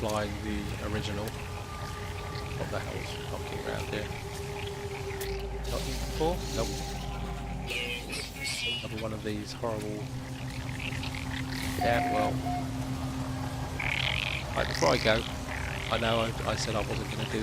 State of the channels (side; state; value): both; identical; correlation 1.00